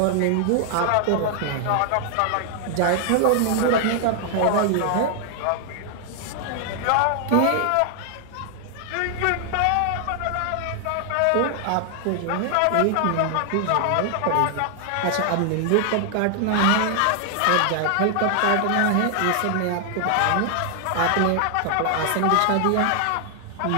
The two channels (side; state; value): both; different; correlation 0.00